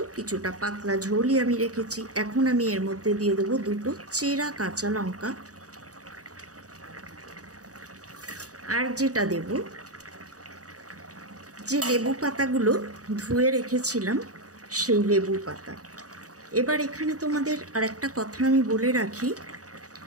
কিছুটা পাতলা ঝোলই আমি রেখেছি। এখন আমি এর মধ্যে দিয়ে দেবো 2টো চেরা কাঁচা লঙ্কা, আর যেটা দেব যে লেবু পাতাগুলো ধুয়ে রেখেছিলাম সেই লেবু পাতা। এবার এখানে তোমাদের আর একটা কথা আমি বলে রাখি,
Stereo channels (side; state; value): left; late; 0.66 ms